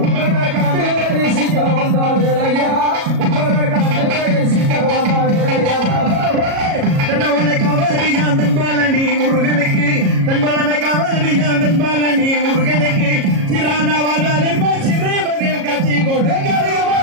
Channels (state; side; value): late; left; 37 ms